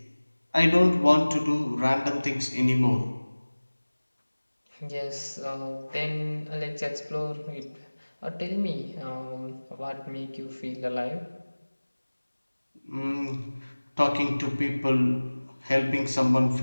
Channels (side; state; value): both; inverted; correlation -1.00